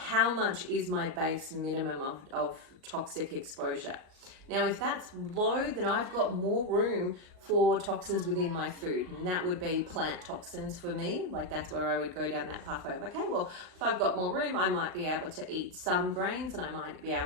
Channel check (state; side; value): late; left; 38 ms